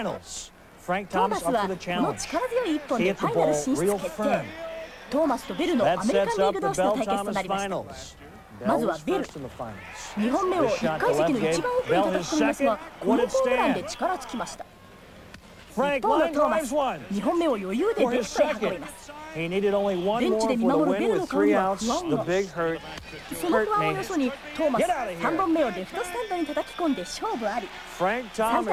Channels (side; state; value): both; identical; correlation 1.00